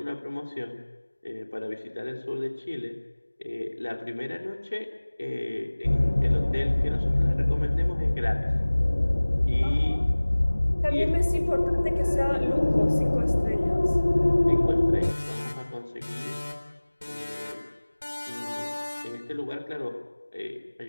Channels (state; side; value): inverted; both; correlation -1.00